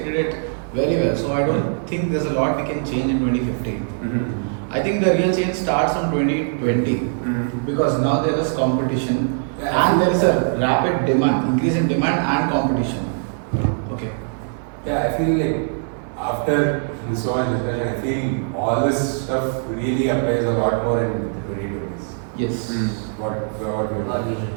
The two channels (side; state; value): left; silent; 57 dB below the other